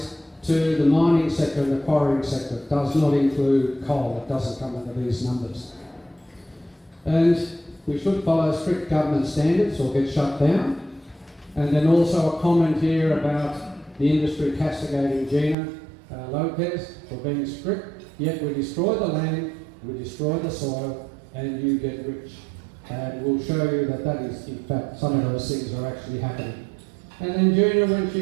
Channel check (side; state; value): left; drops out; at 15.6 s